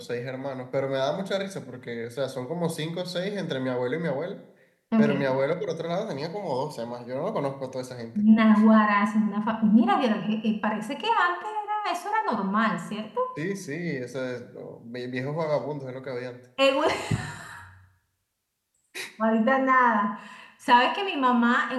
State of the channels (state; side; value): identical; both; correlation 1.00